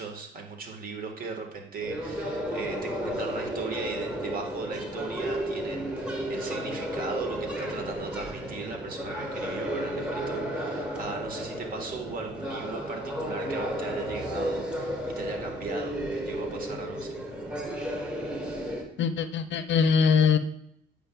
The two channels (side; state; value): both; normal; correlation 0.59